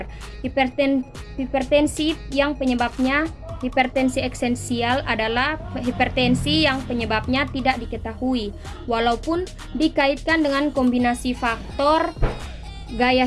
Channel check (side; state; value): both; identical; correlation 1.00